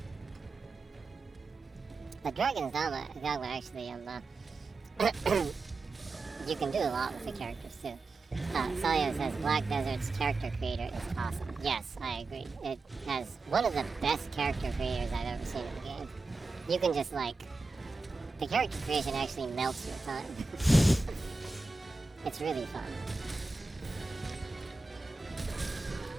The Dragon's Dogma actually, you can do a lot with the characters too. Celio says Black Desert's character creator is awesome. Yes, I agree. It has one of the best character creators I've ever seen in the game. You can just like, the character creation actually melts your time. It's really fun.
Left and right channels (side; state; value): left; quieter; 3.6 dB